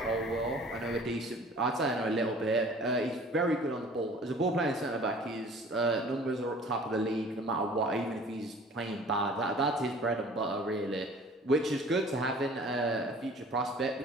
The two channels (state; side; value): normal; both; correlation 0.48